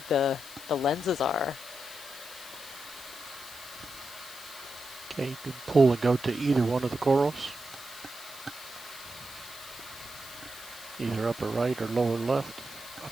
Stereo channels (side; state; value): left; noise; hiss, 16 dB below the sound